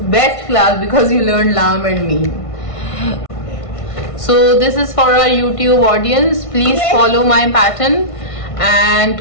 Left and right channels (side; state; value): right; late; 1.5 ms